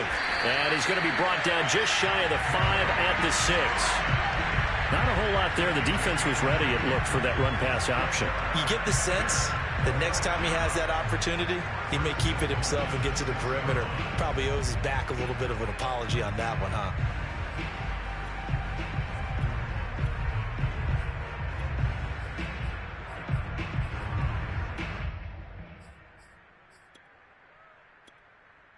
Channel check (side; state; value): both; identical; correlation 1.00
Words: And he's going to be brought down just shy of the 5 at the 6. Not a whole lot there. The defense was ready, it looked, for that run-pass option. You get the sense that next time he has that opportunity, he may keep it himself and get to the perimeter. Probably owes his back a little bit of an apology on that one, huh?